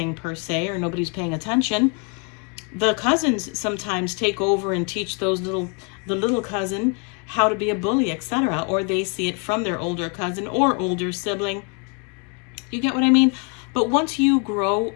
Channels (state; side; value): quieter; right; 35.4 dB